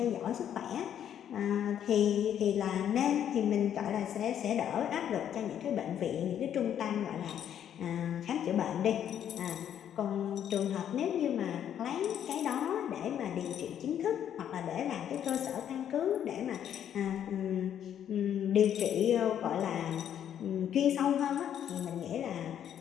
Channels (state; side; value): quieter; right; 9.7 dB